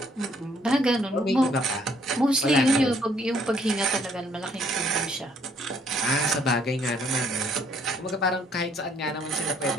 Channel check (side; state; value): both; normal; correlation 0.66